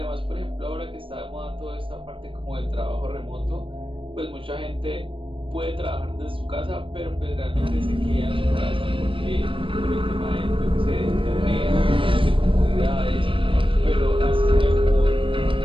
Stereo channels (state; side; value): late; left; 0.25 ms